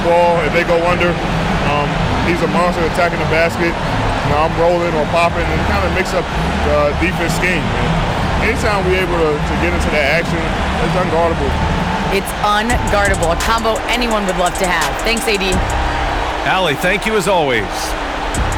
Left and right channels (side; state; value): both; identical; correlation 1.00